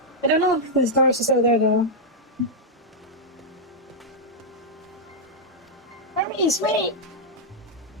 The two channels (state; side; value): normal; both; correlation -0.04